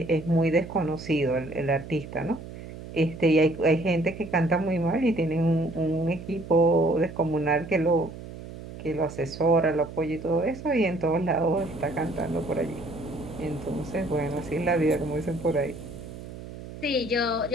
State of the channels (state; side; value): noise; right; hum, 13 dB below the sound